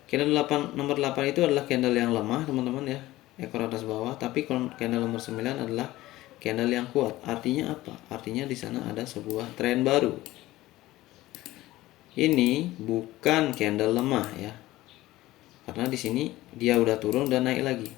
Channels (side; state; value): right; quieter; 17.1 dB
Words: Candle 8, nomor 8 itu adalah candle yang lemah, teman-teman ya, ekor atas bawah. Tapi candle nomor 9 adalah candle yang kuat. Artinya apa? Artinya di sana ada sebuah tren baru. Ini bukan candle lemah ya, karena di sini dia udah turun dan naik lagi,